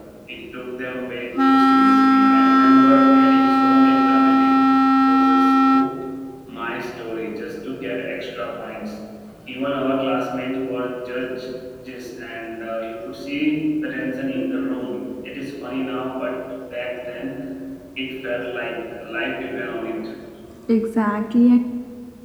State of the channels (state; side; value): identical; both; correlation 1.00